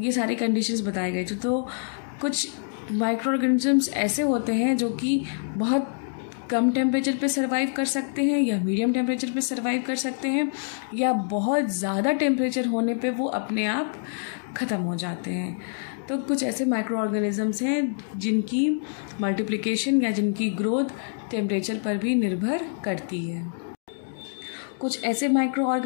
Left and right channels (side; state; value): right; silent; digital silence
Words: ये सारी कंडीशंस बताए गए थे। तो कुछ माइक्रो ऑर्गेनिजम्स ऐसे होते हैं जो कि बहुत कम टेम्परेचर पे सर्वाइव कर सकते हैं या मीडियम टेम्परेचर पे सर्वाइव कर सकते हैं, या बहुत ज़्यादा टेम्परेचर होने पे वो अपने आप ख़त्म हो जाते हैं। तो कुछ ऐसे माइक्रो ऑर्गेनिजम्स हैं जिनकी मल्टीप्लिकेशन या जिनकी ग्रोथ टेम्परेचर पर भी निर्भर करती है। कुछ ऐसे माइक्रो